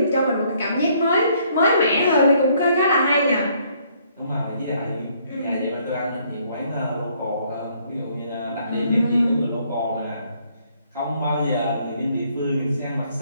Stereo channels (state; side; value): inverted; both; correlation -0.66